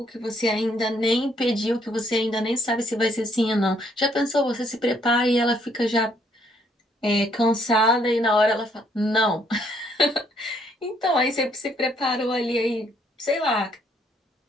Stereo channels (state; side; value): normal; both; correlation 0.68